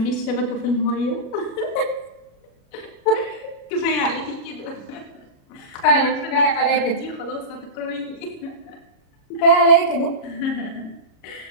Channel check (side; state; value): right; late; 36 ms